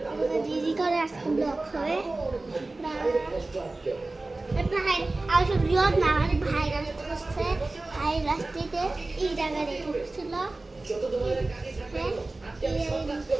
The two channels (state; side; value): quieter; left; 3.1 dB